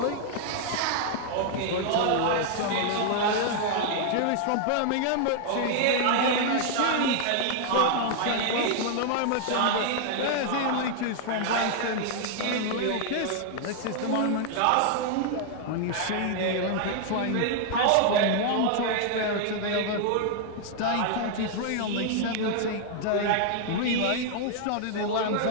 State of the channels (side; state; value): both; different; correlation 0.00